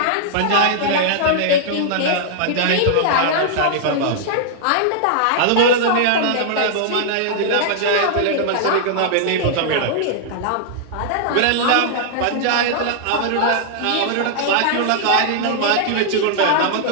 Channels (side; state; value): both; different; correlation -0.01